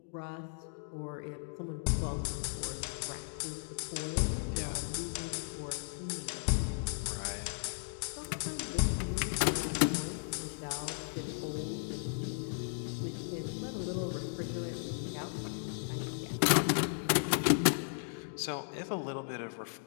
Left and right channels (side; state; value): right; silent; digital silence